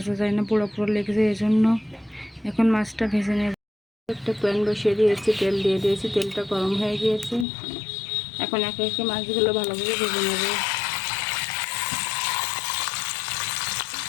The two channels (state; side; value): drops out; right; at 7.5 s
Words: যায় না, পোড়া পোড়া লেগে যায়, এই জন্য। এখন মাছটা ভেজে নেব। একটা প্যান বসিয়ে দিয়েছি, তেল দিয়ে দিয়েছি, তেলটা গরম হয়ে গিয়েছে। এখন একে একে মাছগুলো ভালোভাবে ভেজে নেব।